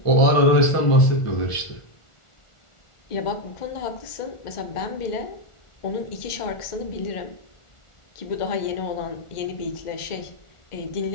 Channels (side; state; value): right; late; 1.4 ms